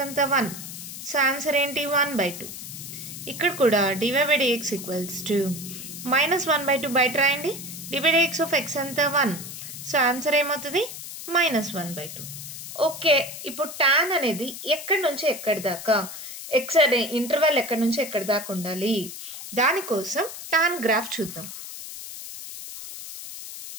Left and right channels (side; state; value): left; noise; hiss, 10 dB below the sound